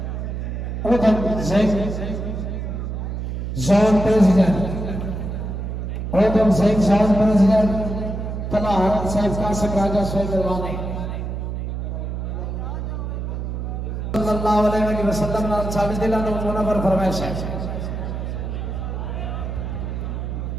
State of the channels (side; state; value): right; noise; hum, 4 dB below the sound